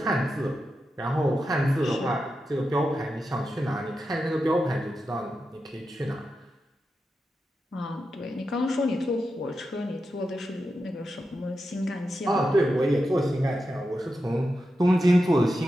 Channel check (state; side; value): normal; both; correlation 0.89